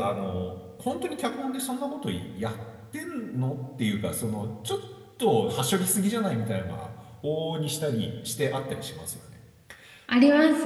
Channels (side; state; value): both; identical; correlation 1.00